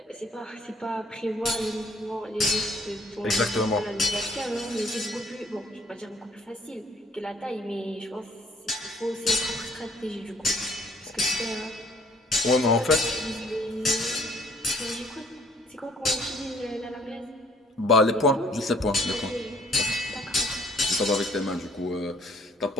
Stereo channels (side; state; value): both; normal; correlation 0.61